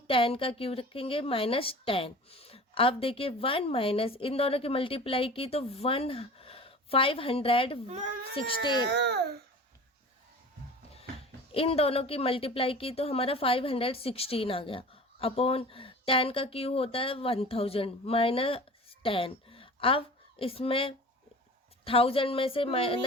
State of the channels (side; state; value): both; normal; correlation 0.39